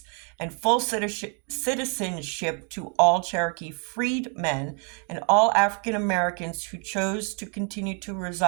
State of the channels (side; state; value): left; quieter; 38.9 dB